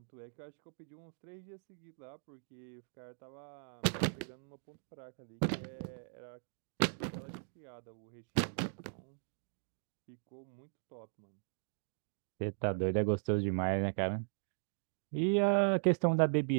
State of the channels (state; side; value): silent; left; digital silence